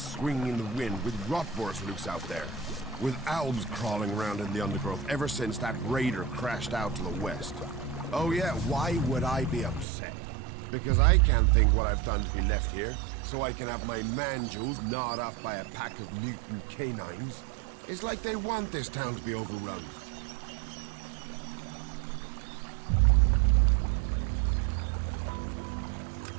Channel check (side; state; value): left; drops out; at 9.9 s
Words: in the wind, with rotboars loose out there. With Albs crawling around in the undergrowth ever since that raider crashed out to the west. Oh yeah, why would I be upset? Because I can't think what I've done to be left here, so I can have my manjos gnawed off by a pack of mutant canines. It's like they want this town to be overrun.